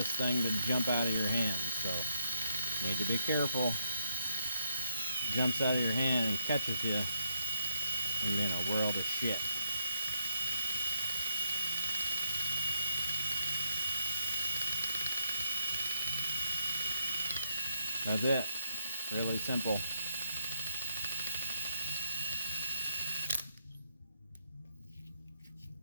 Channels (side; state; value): both; inverted; correlation -0.71